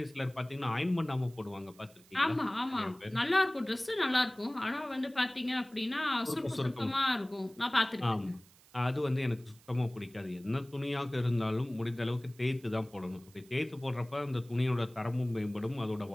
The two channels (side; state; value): right; noise; hiss, 26 dB below the sound